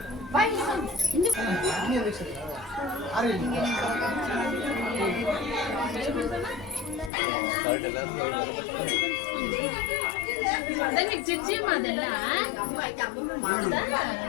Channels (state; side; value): drops out; right; at 7.1 s